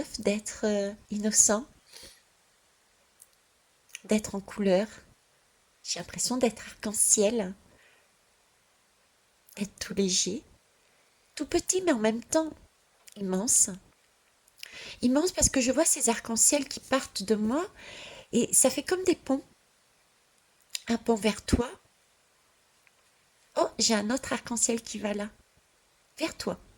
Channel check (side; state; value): both; identical; correlation 1.00